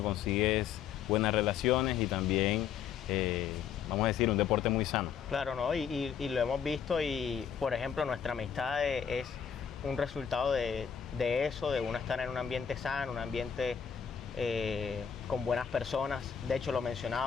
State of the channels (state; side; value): quieter; right; 7.8 dB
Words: consigues buenas relaciones y también, vamos a decir, un deporte muy sano. Claro, ¿no? Y lo hemos visto, y por ejemplo nuestra amistad es un resultado de eso, de uno estar en un ambiente sano, un ambiente con buenas personas. De hecho, lo